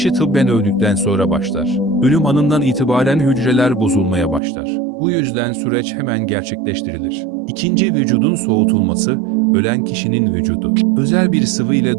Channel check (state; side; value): drops out; left; at 4.4 s